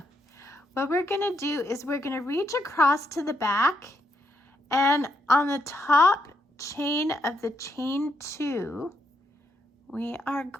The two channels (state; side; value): normal; both; correlation 0.78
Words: What we're gonna do is we're gonna reach across to the back, and on the top chain of the chain 2, we are